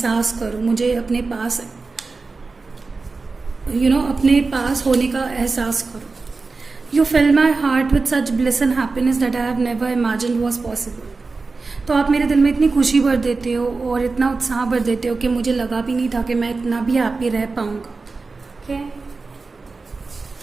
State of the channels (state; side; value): quieter; left; 4.0 dB